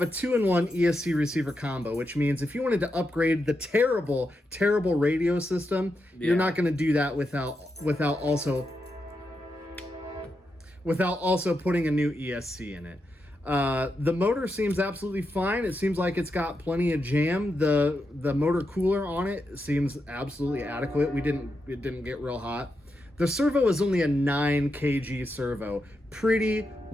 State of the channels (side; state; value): both; normal; correlation 0.85